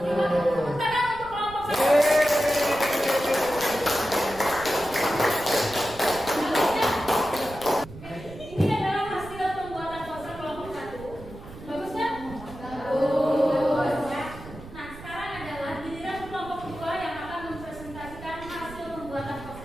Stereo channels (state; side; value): noise; right; rumble, 15 dB below the sound